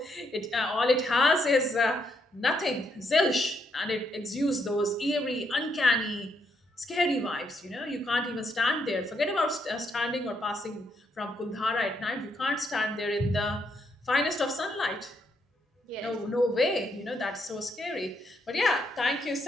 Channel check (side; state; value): both; normal; correlation 0.76